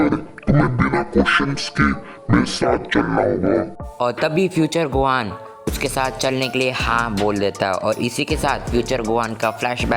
तुम्हें बिना क्वेश्चंस के मेरे साथ चलना होगा। और तभी फ्यूचर गोहान उसके साथ चलने के लिए हाँ बोल देता है। और इसी के साथ फ्यूचर गोहान का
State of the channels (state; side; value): identical; both; correlation 1.00